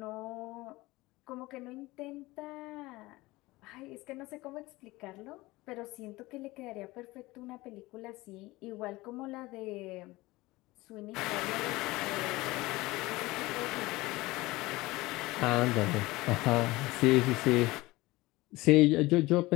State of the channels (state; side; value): quieter; right; 20.3 dB